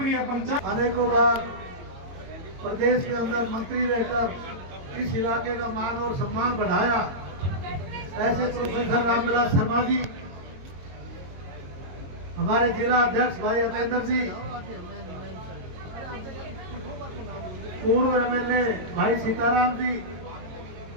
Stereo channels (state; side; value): late; left; 22 ms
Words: पंचायत अनेकों बार प्रदेश के अंदर मंत्री रहकर इस इलाके का मान और सम्मान बढ़ाया। ऐसे प्रोफेसर रामविलास शर्मा जी, हमारे जिला अध्यक्ष भाई अतेंद्र जी, पूर्व एमएलए भाई सीताराम जी,